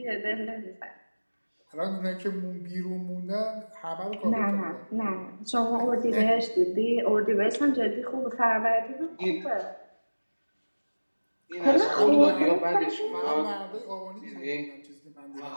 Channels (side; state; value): both; inverted; correlation -1.00